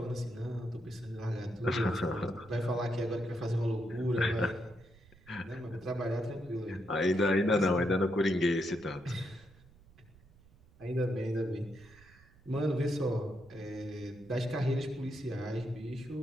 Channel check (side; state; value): right; noise; rumble, 25 dB below the sound